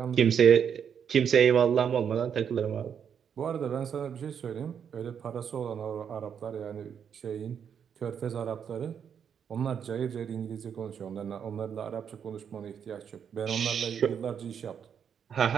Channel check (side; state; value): left; quieter; 7.8 dB